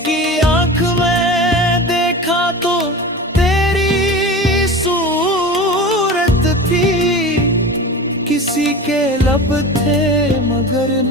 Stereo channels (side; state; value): both; normal; correlation 0.32